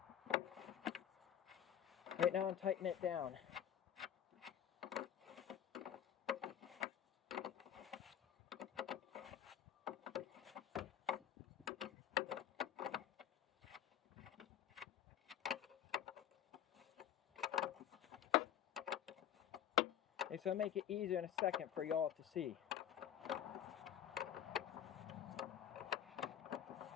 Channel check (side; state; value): right; quieter; 10.2 dB